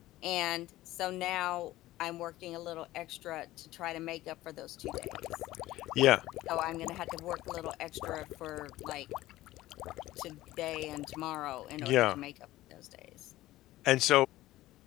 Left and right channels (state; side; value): quieter; right; 16.3 dB